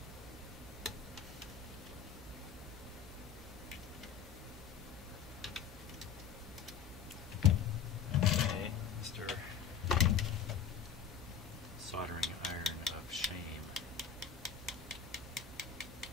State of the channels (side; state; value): right; quieter; 7.5 dB